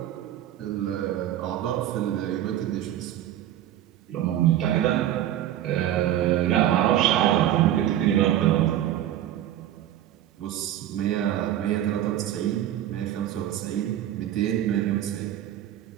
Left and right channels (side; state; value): left; quieter; 12.1 dB